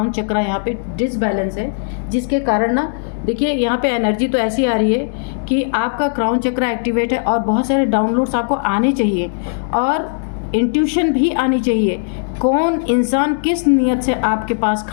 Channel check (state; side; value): silent; right; digital silence